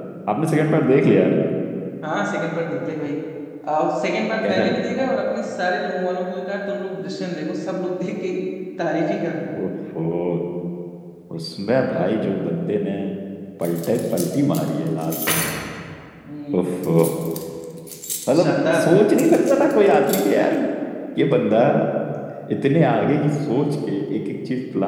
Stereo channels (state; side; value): identical; both; correlation 1.00